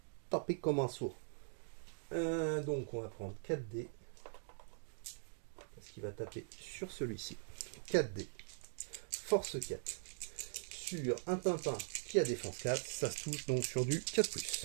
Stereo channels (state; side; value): silent; left; digital silence